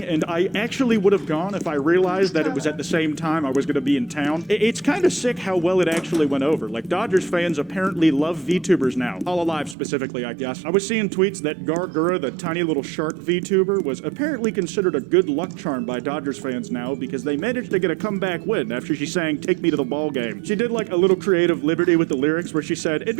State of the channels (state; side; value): drops out; left; at 9.8 s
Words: and I actually would have gone if I realized that it was at the same time I was going to be in town. It's kind of sick how well it actually went over. Like, Dodgers fans apparently love VTubers now. HoloLive specifically, I guess. I was seeing tweets that Gargura, the tiny little shark VTuber, was apparently considered a good luck charm by Dodgers fans now because they managed to get a comeback win after she sang "Take Me to the Ball Game." She did like a little creative liberty with the lyrics where she said, "It'd